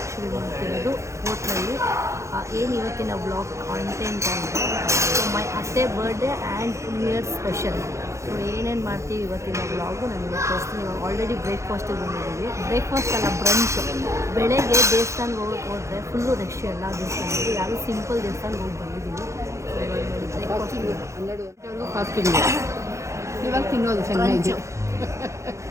ಶುರು ಮಾಡ್ತಿರೋದು ಹೋಟ್ಲಲ್ಲಿ. ಏನು ಇವತ್ತಿನ ಬ್ಲಾಗ್ ಕಾಂಟೆಂಟ್ ಅಂದರೆ ಮೈ ಅತ್ತೆ birthday and new year special. So ಏನೇನು ಮಾಡ್ತೀವಿ ಇವತ್ತಿನ ಬ್ಲಾಗು ನಾನು ಇವತ್ತು ತೋರಿಸ್ತೀನಿ. ಇವಾಗ ಆಲ್ರೆಡಿ ಬ್ರೇಕ್ಫಾಸ್ಟಿಗೆ ಬಂದಿದ್ದೀವಿ. ಬ್ರೇಕ್ಫಾಸ್ಟ್ ಅಲ್ಲ, ಬ್ರಂಚ್. ಬೆಳಗ್ಗೆ ದೇವಸ್ಥಾನಕ್ಕೆ ಹೋದರೆ ಫುಲ್ಲು ರಶ್ ಎಲ್ಲ ದೇವಸ್ಥಾನಕ್ಕೆ. ಯಾರು ಸಿಂಪಲ್ ದೇವಸ್ಥಾನಕ್ಕೆ ಹೋಗಿ ಬಂದಿದ್ದೀವಿ. ಬ್ರೇಕ್ಫಾಸ್ಟ್ 12 ಫಾಸ್ಟಿಂಗ್ ಇವಾಗ ತಿನ್ನೋದು ಚೆನ್ನಾಗಿ.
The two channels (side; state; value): left; late; 0.14 ms